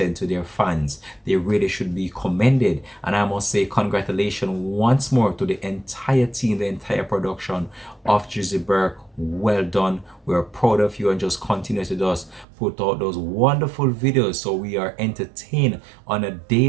to their fans, they really should be commended. And I must say congratulations once more to the entire team, the entire production of Drizzy Burke. Well done. We're proud of you, and just continue to just put out those wonderful videos so we are entertained on a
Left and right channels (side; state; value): left; drops out; at 12.5 s